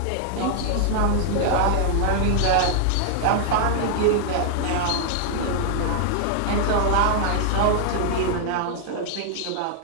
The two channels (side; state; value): both; different; correlation -0.01